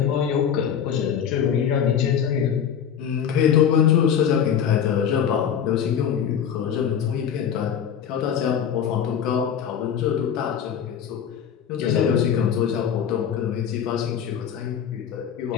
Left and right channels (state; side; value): quieter; right; 8.3 dB